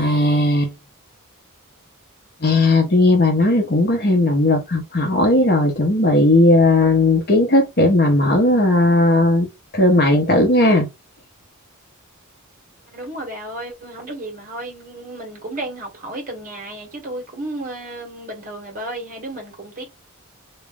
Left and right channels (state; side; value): normal; both; correlation 0.46